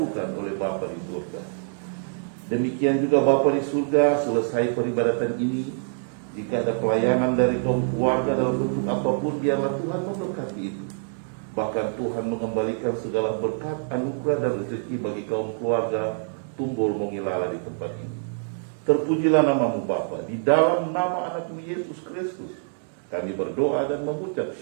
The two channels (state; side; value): silent; left; digital silence